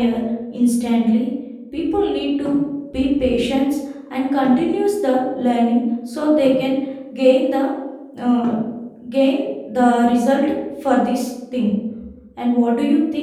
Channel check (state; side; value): identical; both; correlation 1.00